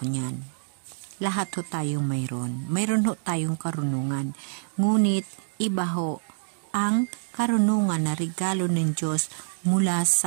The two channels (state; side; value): silent; left; digital silence